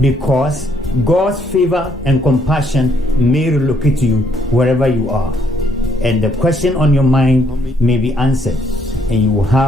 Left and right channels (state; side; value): normal; both; correlation 0.70